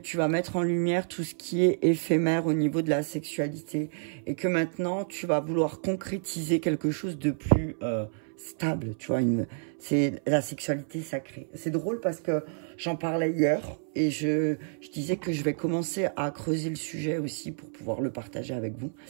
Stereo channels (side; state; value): left; silent; 58 dB below the other